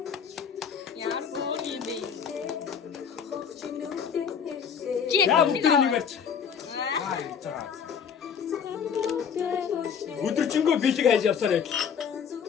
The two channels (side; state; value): right; quieter; 7.1 dB